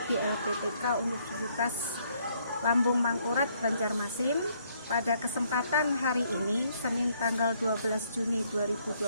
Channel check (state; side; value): inverted; both; correlation -0.68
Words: di LPTK Universitas Lambung Mangkurat, Banjarmasin. Pada kesempatan hari ini, Senin tanggal 12 Juni